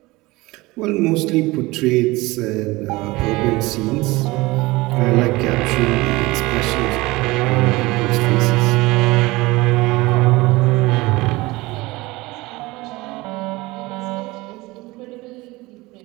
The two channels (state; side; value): quieter; left; 21.3 dB